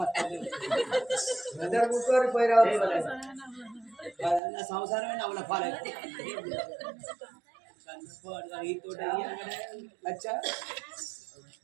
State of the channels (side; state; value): left; drops out; at 4.4 s